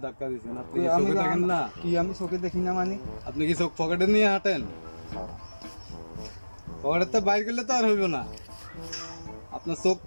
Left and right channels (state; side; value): inverted; both; correlation -1.00